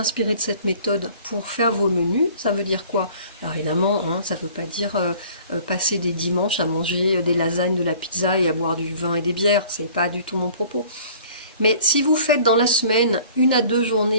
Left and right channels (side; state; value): both; inverted; correlation -0.51